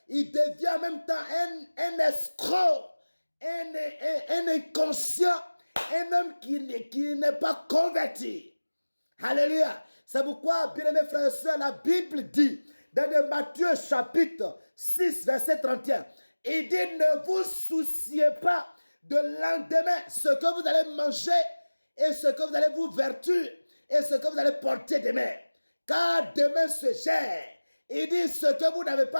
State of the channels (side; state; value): both; inverted; correlation -1.00